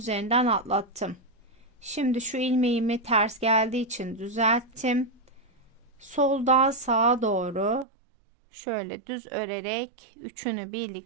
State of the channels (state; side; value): drops out; left; at 7.9 s